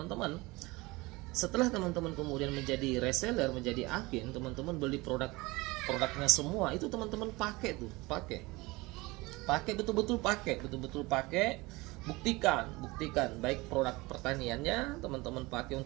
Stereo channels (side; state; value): left; quieter; 22.7 dB